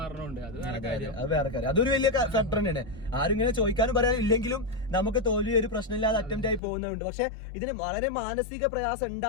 അത് വേറെ കാര്യം. അതൊരു വലിയ ഫാക്ടർ തന്നെയാണ്. ആരും ഇങ്ങനെ ചോദിക്കാനും പറയാനില്ലെങ്കിലും നമുക്ക് തോൽവി ഒരു പ്രശ്നമില്ലാതെ അറ്റംപ്റ്റ് ആയി പോകുന്നുണ്ട്. പക്ഷെ ഇതിന് വളരെ മാനസിക പ്രയാസം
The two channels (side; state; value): right; drops out; at 6.6 s